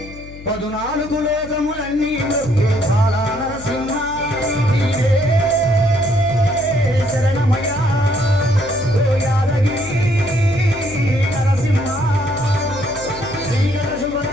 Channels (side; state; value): left; noise; hum, 16 dB below the sound